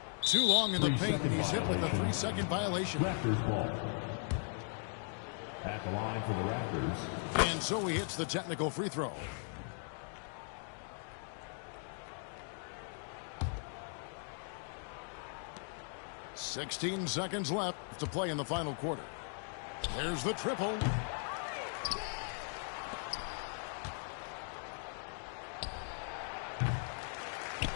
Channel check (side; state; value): right; silent; 52 dB below the other